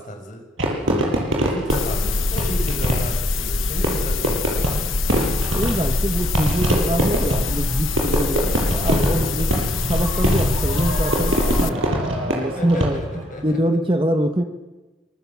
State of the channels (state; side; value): normal; both; correlation 0.69